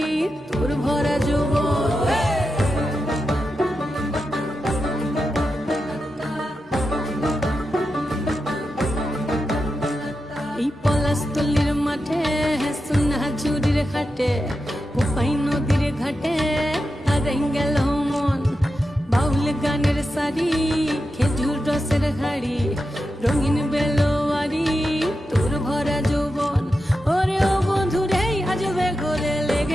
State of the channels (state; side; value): normal; both; correlation 0.89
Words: তোর ভরা যৌবন এই পলাশতলির মাঠে সোনা ঝুড়ির হাটে কোপাই নদীর ঘাটে হারাই গেল মন বাউল গানের সারি খেজুর রসের হাড়ি রঙিন বেলোয়ারি তোর ভরা যৌবন ওরে ও বন্ধুরে আজবে ঘরে